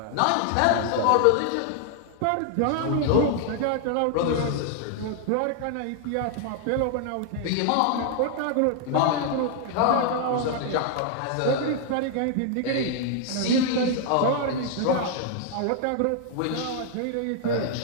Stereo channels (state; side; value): different; both; correlation 0.00